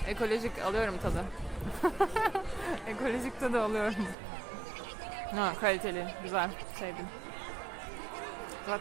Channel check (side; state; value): left; drops out; at 4.2 s